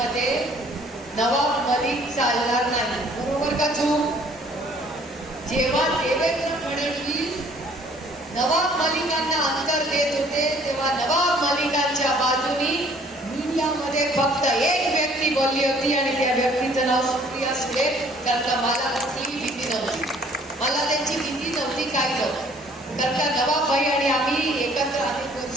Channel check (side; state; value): both; normal; correlation 0.57